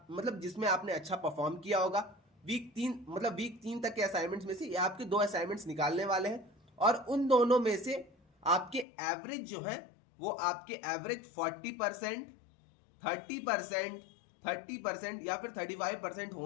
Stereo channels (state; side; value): drops out; right; at 8.8 s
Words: जिसमें आपने अच्छा परफॉर्म किया होगा। वीक 3 तक के असाइनमेंट्स में से ये आपके 2 असाइनमेंट्स निकालने वाले हैं और उन दोनों में से आपके एवरेज जो है वो आपके एवरेज 40%, 30%, 30% या फिर 35%